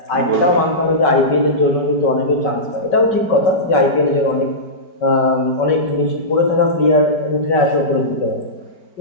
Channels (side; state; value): right; late; 5.3 ms